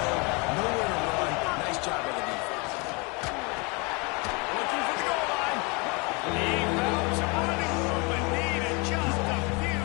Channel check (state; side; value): quieter; right; 29.7 dB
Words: nowhere to run. Nice job by the defense. Looking for the goal line. He found some running room and needed just a few